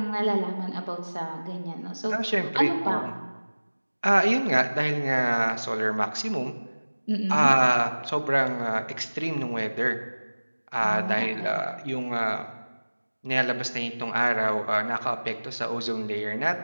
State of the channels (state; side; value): inverted; both; correlation -1.00